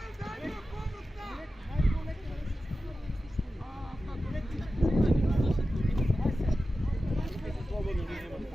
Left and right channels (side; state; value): both; normal; correlation 0.93